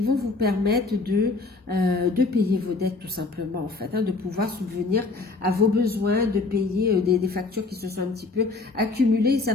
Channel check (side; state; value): right; quieter; 3.7 dB